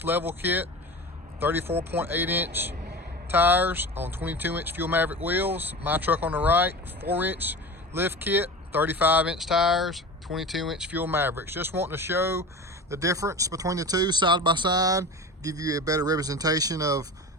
level kit, 34.8-inch tires on 22-inch Fuel Maverick wheels. My truck on the right, 4-inch lift kit, 35-inch tires, 22-inch Fuel Mavericks. Just wanting to show the difference between the two side by side, give you a better representation of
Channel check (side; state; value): both; normal; correlation 0.32